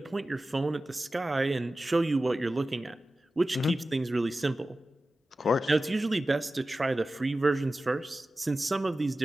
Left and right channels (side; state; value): both; normal; correlation 0.95